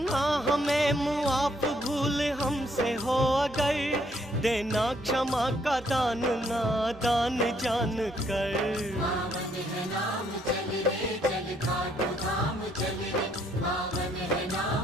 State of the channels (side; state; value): both; normal; correlation 0.69